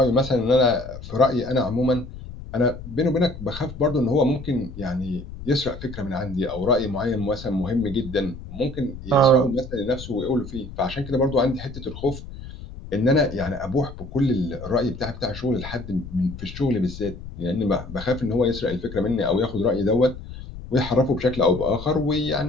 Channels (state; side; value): noise; left; rumble, 12 dB below the sound